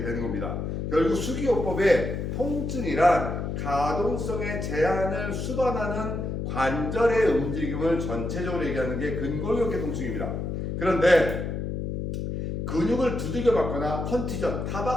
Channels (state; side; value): noise; left; hum, 3 dB below the sound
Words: 되는 겁니다. 결국 수기요법의 통증이란 가동성의 제한을 수반하는 관절의 움직임을 전체적으로 얘기하는 게 근골격계 통증입니다. 그런데 근육을 두들겨 맞거나 컨티전,